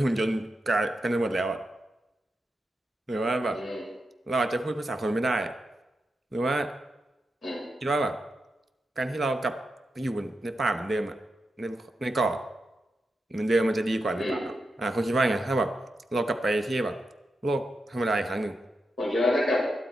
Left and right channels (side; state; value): both; normal; correlation 0.87